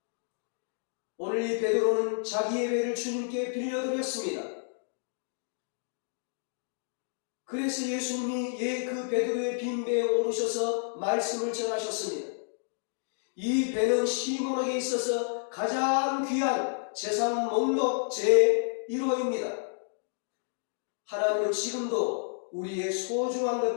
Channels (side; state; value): right; silent; digital silence